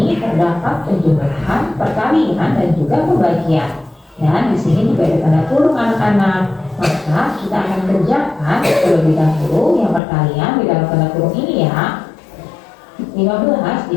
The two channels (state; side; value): drops out; right; at 10.0 s